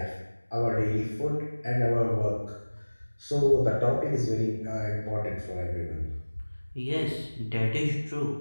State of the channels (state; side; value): inverted; both; correlation -1.00